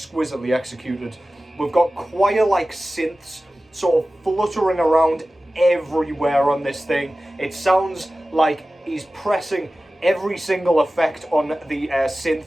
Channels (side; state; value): both; normal; correlation 0.96